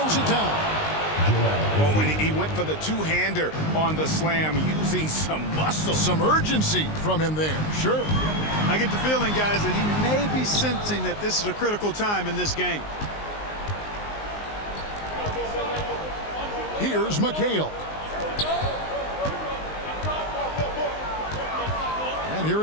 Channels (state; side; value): late; right; 19 ms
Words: it down. Oh, and he went for the two-hander on the slam, using some muscle. Some urgency from him there, sure. I get the feeling, guys, that he may be sensing that this is a critical time in this game. Here's McHale. And here